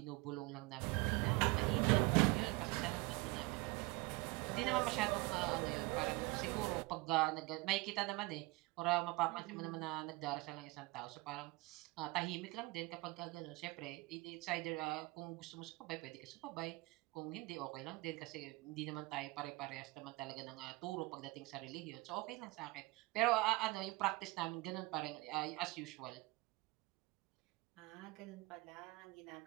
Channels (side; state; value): left; quieter; 22.9 dB